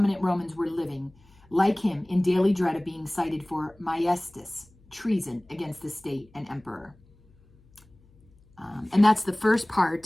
Romans were living, like him, in daily dread of being cited for maiestas, treason against the state and emperor. And that's the first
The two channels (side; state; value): left; noise; hum, 29 dB below the sound